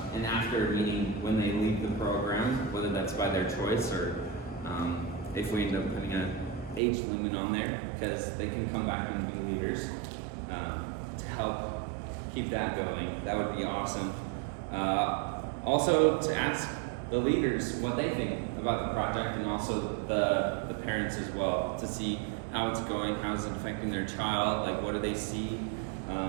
And after, meaning when they leave the program, whether that's by their choice or if we end up putting an age limit on there, because they can come back and be leaders to help keep that going. That would be awesome. Also to ask the leaders what they think about the project, and also the parents as well, to see how it's going, how it's affecting their child, like what do they see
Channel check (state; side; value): drops out; left; at 6.8 s